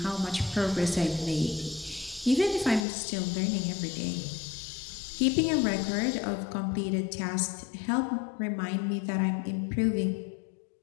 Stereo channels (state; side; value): drops out; right; at 2.9 s